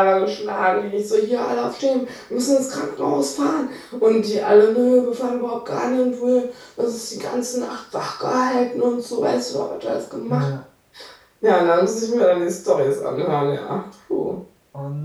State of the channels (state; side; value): identical; both; correlation 1.00